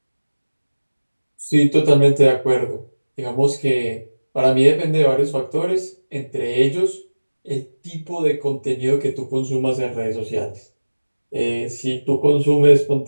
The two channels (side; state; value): both; inverted; correlation -1.00